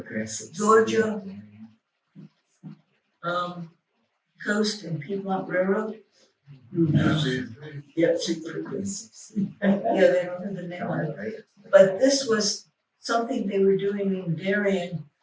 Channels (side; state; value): both; identical; correlation 1.00